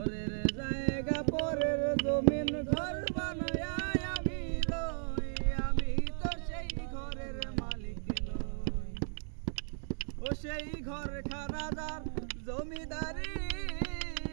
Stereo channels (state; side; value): silent; left; digital silence